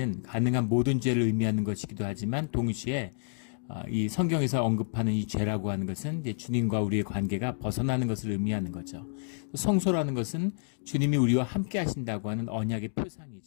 가능한 모든 죄를 의미하는 것이기도 하지만 동시에 이 성경에서 언급하는 이 죄라고 하는 것은 이제 주님과 우리의 관계가 벗어나는 것을 의미하는 거죠. 성소라는 것은 주님이 우리와 함께 하신다고 하는 언약의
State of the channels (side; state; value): right; silent; digital silence